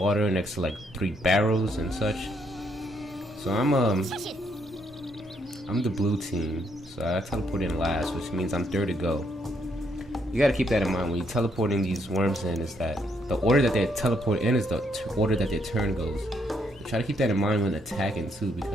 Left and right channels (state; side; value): normal; both; correlation 0.73